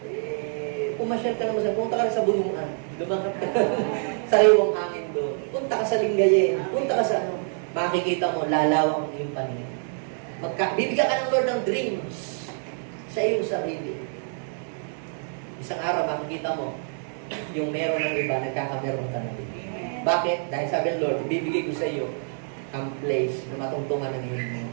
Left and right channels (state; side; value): silent; left; 61 dB below the other